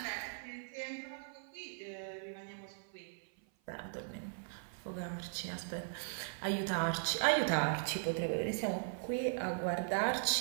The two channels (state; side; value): silent; left; 52 dB below the other